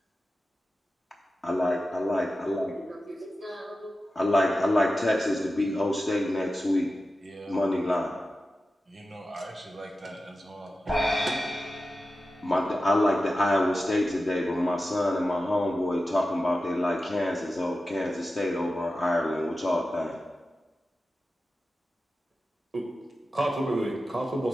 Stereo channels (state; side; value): normal; both; correlation 0.93